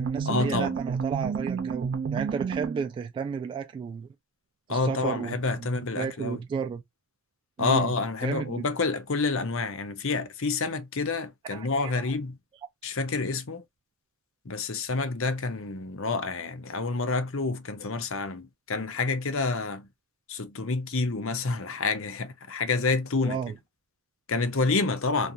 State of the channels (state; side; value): normal; both; correlation 0.20